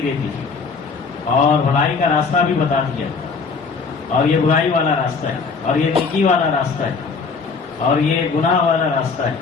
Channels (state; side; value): quieter; right; 4.9 dB